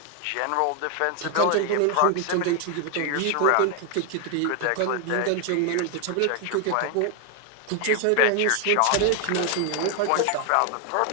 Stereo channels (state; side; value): different; both; correlation 0.00